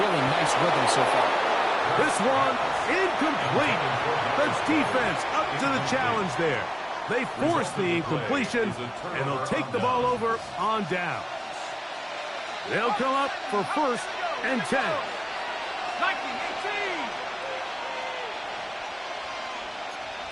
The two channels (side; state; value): both; identical; correlation 1.00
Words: really nice rhythm so far. This one incomplete. That's defense up to the challenge there. They force the incompletion, and they'll take the ball over on down. They'll come up for 1st and 10. 19-18.